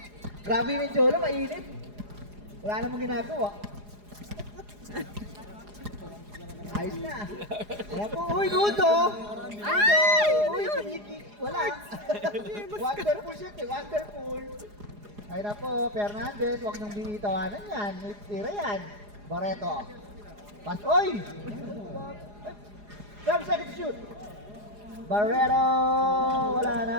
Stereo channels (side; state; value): left; late; 4.8 ms